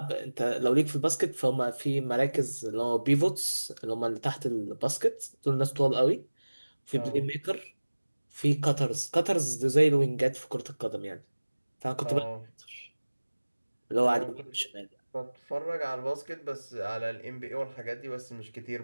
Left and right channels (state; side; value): inverted; both; correlation -1.00